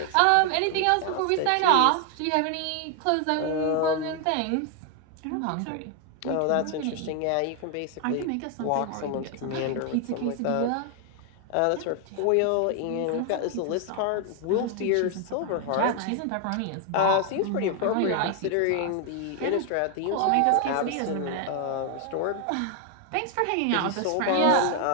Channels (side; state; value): both; different; correlation 0.00